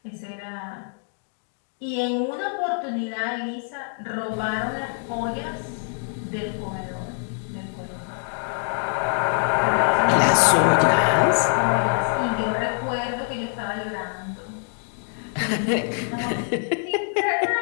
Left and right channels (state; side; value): silent; right; 58 dB below the other